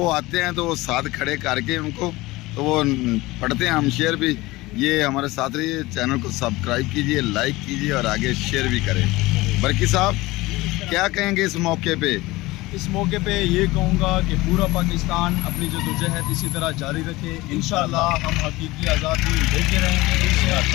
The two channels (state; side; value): quieter; right; 20.1 dB